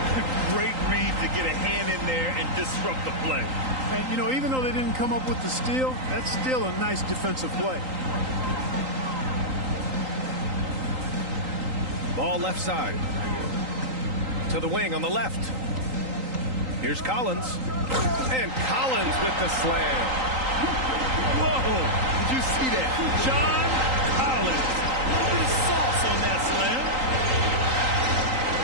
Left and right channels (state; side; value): late; left; 3.8 ms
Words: Great read to get a hand in there and disrupt the play. And, you know, even though they didn't come up with the steal, that's still a nice defensive play. Ball left side. To the wing on the left. Here's Collins. And Collins with the slam. Whoa! Did you see that? John Collins. His sauce on that slam.